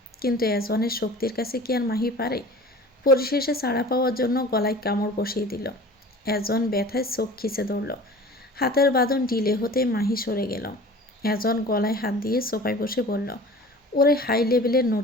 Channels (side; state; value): both; normal; correlation 0.42